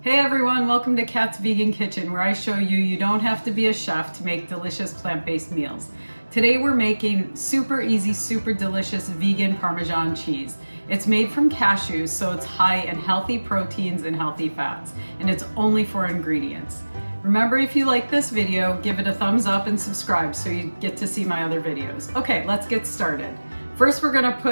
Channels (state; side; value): inverted; both; correlation -1.00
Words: Hey everyone, welcome to Kat's Vegan Kitchen, where I show you don't have to be a chef to make delicious plant-based meals. Today we're making super easy, super delicious vegan Parmesan cheese. It's made from cashews, so it's high in healthy proteins and healthy fats, and it's only 4 ingredients. Remember, if you like this video, give it a thumbs up and subscribe so you get to see my other videos. Okay, let's get started. First, we're gonna